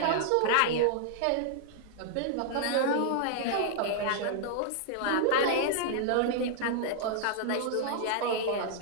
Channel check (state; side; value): different; both; correlation 0.00